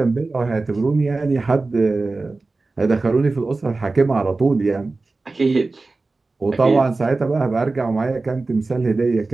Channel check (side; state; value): left; quieter; 3.5 dB